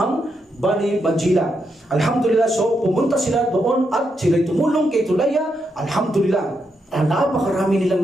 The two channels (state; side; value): normal; both; correlation 0.82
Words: Bani Bajila. Alhamdulillah, so pumunta sila doon at sila'y tumulong kay Tulaya. Alhamdulillah. Napakarami nilang